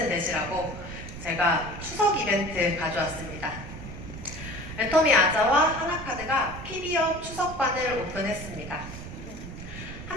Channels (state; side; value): noise; right; rumble, 11 dB below the sound